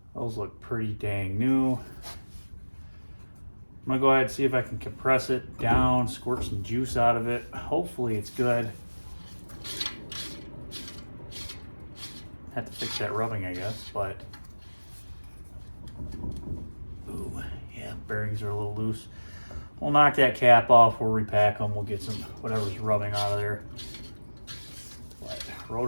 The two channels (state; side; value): inverted; both; correlation -1.00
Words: Those look pretty dang new. I'm gonna go ahead and see if I can compress it down, squirt some juice out of it. Hopefully it's good. Have to fix that rubbing, I guess, but. Ooh, yeah, bearings are a little loose. We'll knock that cap off, we'll repack them, we'll get some whatever's rubbing out of there. But